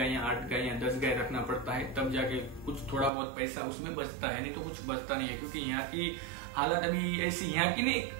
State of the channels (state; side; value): drops out; left; at 3.1 s